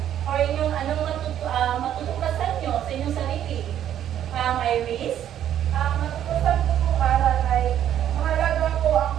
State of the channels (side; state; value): left; quieter; 10.7 dB